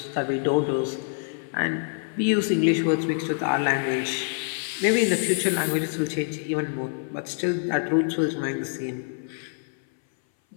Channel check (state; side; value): silent; right; 58 dB below the other